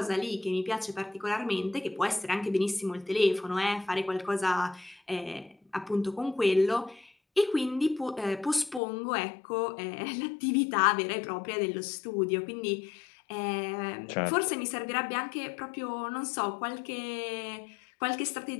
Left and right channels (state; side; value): drops out; right; at 8.8 s